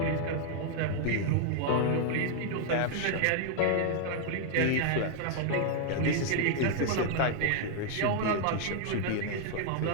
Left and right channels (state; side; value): different; both; correlation 0.00